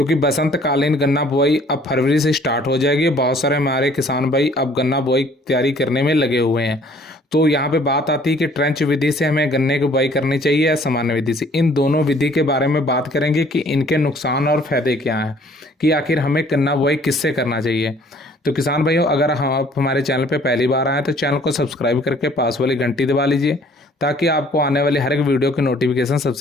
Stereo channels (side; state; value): both; normal; correlation 0.57